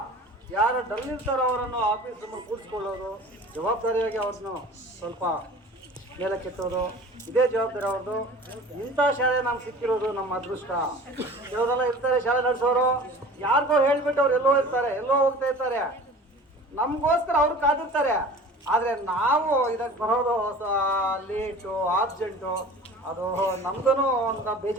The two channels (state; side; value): normal; both; correlation 0.42